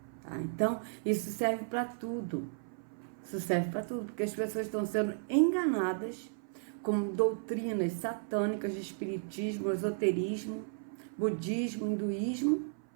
Tá? Então, isso serve para tudo. Isso serve para tudo, porque as pessoas estão sendo enganadas com doutrinas satânicas de espiritismo, esoterismo, budismo, hinduísmo,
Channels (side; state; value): left; silent; 55 dB below the other